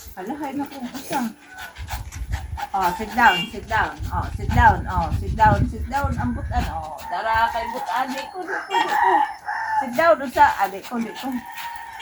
Hala, hay na kung usa. Oh, sit down. Oh, sit down. Ang butan. Oh, dara kay butan. Di ko. Sit down, usa. Di ko.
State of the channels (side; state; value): both; identical; correlation 1.00